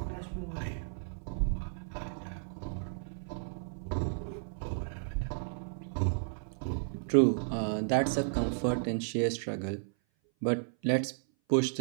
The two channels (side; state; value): left; silent; 56 dB below the other